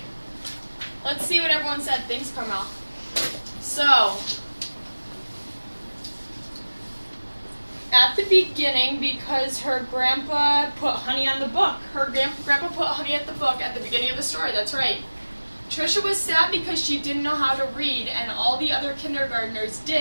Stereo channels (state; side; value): inverted; both; correlation -1.00